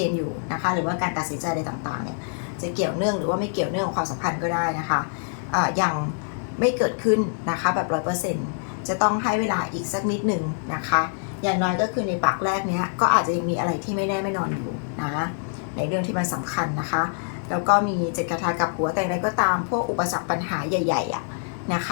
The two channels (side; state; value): right; silent; digital silence